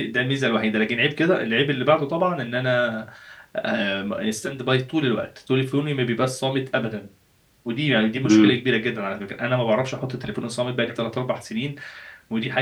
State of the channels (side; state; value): both; identical; correlation 1.00